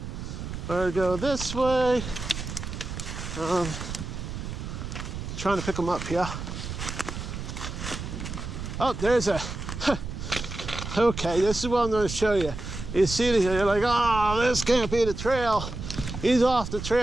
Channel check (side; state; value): right; noise; rumble, 7 dB below the sound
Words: or go this way. Trying to pick them up here. Oh, there's a, okay, this is what I'm going to show you. You see this, you're like, oh, this can't be the trail. He's off the